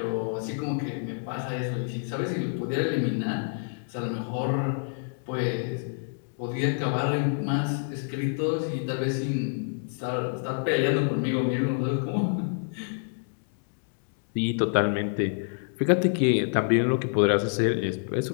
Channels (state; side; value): silent; right; digital silence